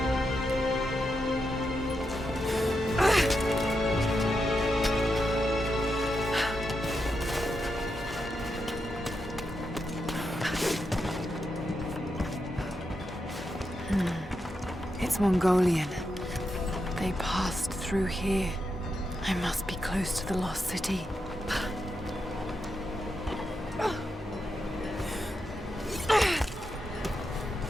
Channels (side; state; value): both; normal; correlation 0.85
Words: It's Mongolian. They passed through here. I must be close to the lost city.